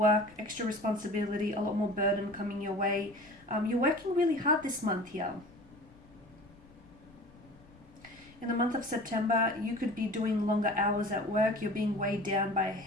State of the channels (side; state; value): left; noise; rumble, 25 dB below the sound